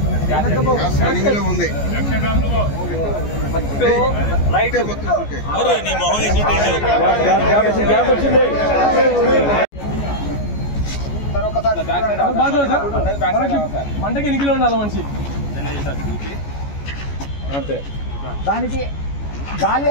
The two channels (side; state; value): right; late; 14 ms